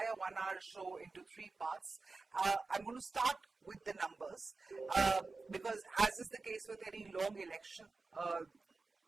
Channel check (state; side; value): quieter; left; 3.8 dB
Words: 1 hour show into three parts. I'm going to start with the numbers because, as is the case with any long election,